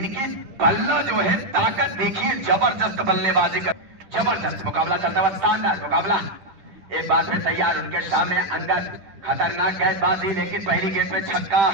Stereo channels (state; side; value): late; left; 10 ms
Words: बल्ला जो है ताकत देखिए, जबरदस्त बल्लेबाजी कर, जबरदस्त मुकाबला चलता हुआ, शानदार मुकाबला। एक बार फिर तैयार उनके सामने अंगद, खतरनाक गेंदबाजी, लेकिन पहली गेंद पे छक्का